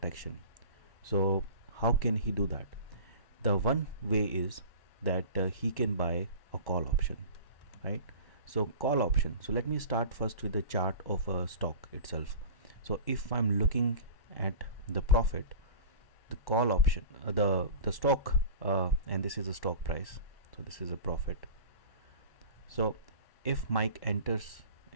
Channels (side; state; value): right; late; 1.1 ms